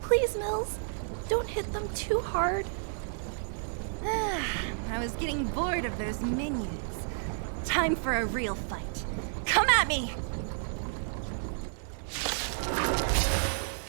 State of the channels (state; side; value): silent; left; digital silence